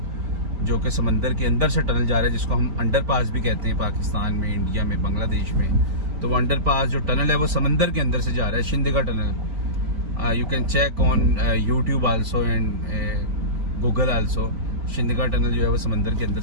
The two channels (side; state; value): left; late; 5.1 ms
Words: जो कि समंदर के अंदर से टनल जा रहा है, जिसको हम अंडर पास भी कहते हैं पाकिस्तान में, इंडिया में, बांग्लादेश में। तो वो अंडर पास जो टनल है वो समंदर के अंदर से जा रहा है, Shindagha tunnel. You can check on YouTube also and Google also. Shindagha tunnel जो है वो समंदर के अंदर